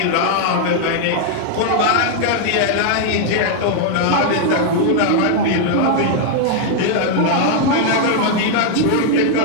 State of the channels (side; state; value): both; different; correlation 0.00